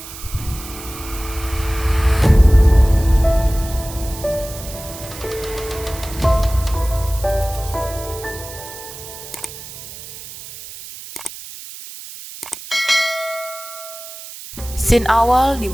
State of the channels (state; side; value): noise; right; hiss, 13 dB below the sound